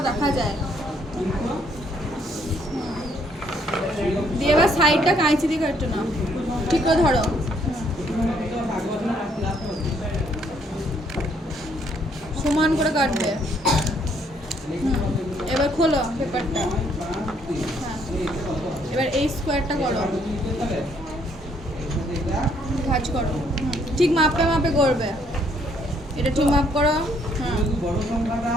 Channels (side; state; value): both; normal; correlation 0.68